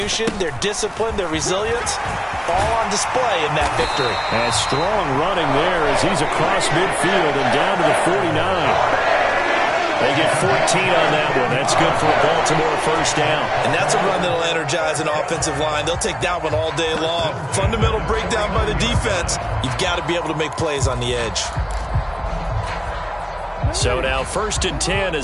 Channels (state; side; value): identical; both; correlation 1.00